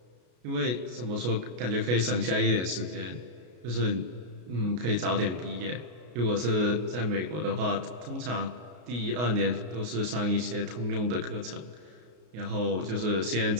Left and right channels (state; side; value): late; left; 33 ms